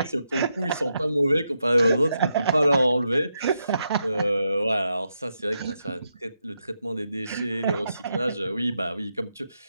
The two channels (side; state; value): both; inverted; correlation -0.84